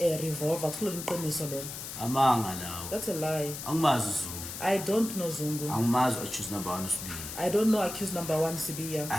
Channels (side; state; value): left; noise; hiss, 8 dB below the sound